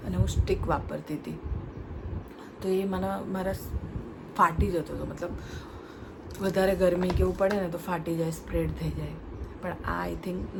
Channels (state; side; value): identical; both; correlation 1.00